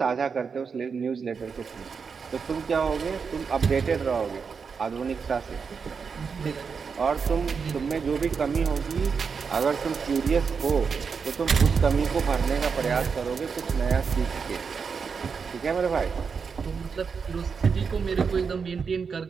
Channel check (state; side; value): quieter; left; 5.7 dB